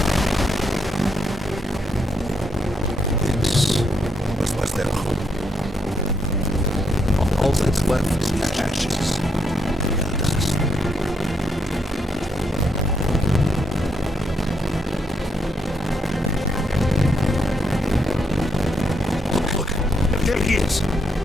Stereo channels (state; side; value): normal; both; correlation 0.77